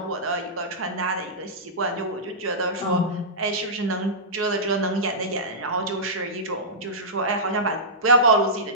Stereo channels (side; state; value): both; normal; correlation -0.15